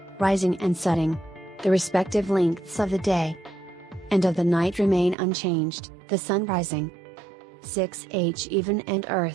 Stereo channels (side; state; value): left; drops out; at 5.2 s